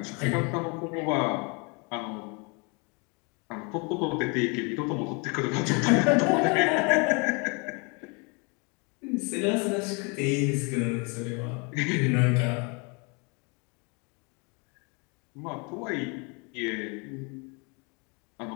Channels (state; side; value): quieter; right; 32.1 dB